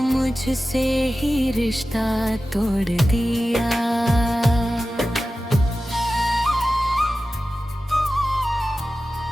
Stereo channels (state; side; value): normal; both; correlation 0.94